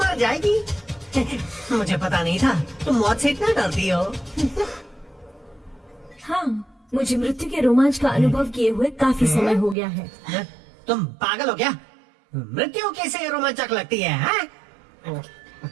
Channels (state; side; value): drops out; left; at 9.8 s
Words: जाएगी। मुझे पता नहीं था तुम मौत से इतना डरती हो। हाँ, मुझे मृत्यु के रोमांच का अनुभव किए हुए काफी समय हो गया है। तुम पागल हो क्या? मृत्यु कैसे रोमांचक लगती है, हाँ?